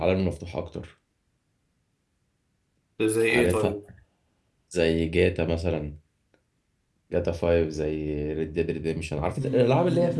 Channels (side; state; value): both; identical; correlation 1.00